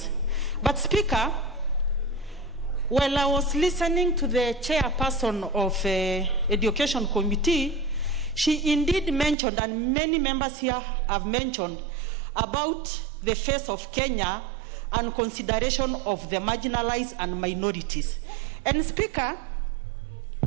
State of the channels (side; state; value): left; drops out; at 9.3 s